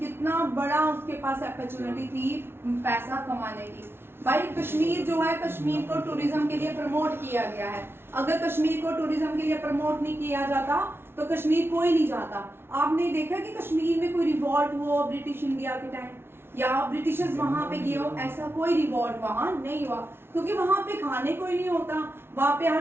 बड़ा उसके पास अपॉर्चुनिटी थी पैसा कमाने की। भाई कश्मीर जो है, कश्मीर को टूरिज्म के लिए प्रमोट किया गया है। अगर कश्मीर को टूरिज्म के लिए प्रमोट नहीं किया जाता तो कश्मीर कोई नहीं जाता। आपने देखा कि कश्मीर में कोई रिवॉल्ट हुआ ब्रिटिश इंडिया के टाइम, या ब्रिटिशर्स वहां पे गए हो, ऐसा कोई रिवॉल्ट वहां नहीं हुआ, क्योंकि वहां पे खाने कोई नहीं होता। वहां पे हर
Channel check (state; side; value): late; left; 0.12 ms